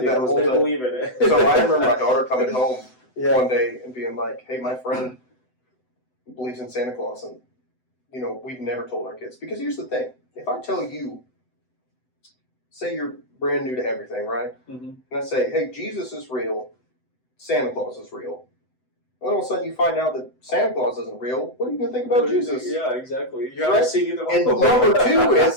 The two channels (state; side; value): late; right; 7.9 ms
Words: that whole they time. believe in it. So I remember my daughter coming home one day and being like, hey, my friend believes in Santa Claus. And, we've never told our kids. Because here's the thing. If I tell you, say you're brand new to everything, right? Mm-hmm. And I say, hey, Jesus is real. Santa Claus is real. And all of a sudden you find out that Santa Claus isn't real. What are you going to think about Jesus? Yeah, exactly. You haven't seen either one. And number two